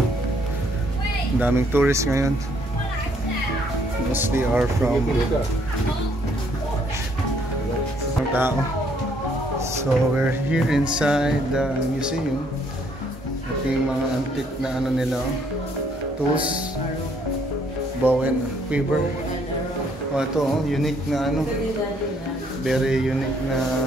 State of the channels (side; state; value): both; normal; correlation 0.67